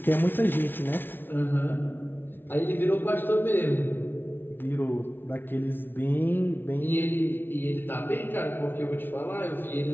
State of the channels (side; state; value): right; late; 0.10 ms